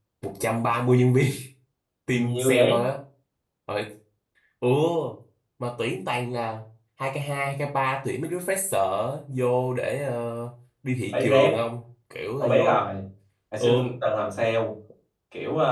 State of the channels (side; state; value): both; identical; correlation 1.00